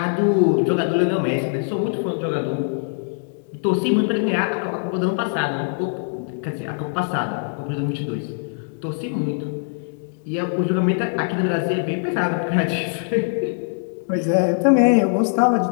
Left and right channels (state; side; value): silent; right; digital silence